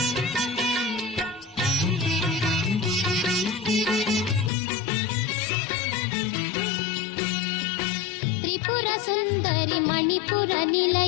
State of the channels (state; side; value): drops out; right; at 4.5 s